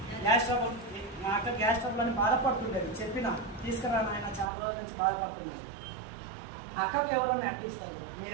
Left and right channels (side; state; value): left; drops out; at 4.5 s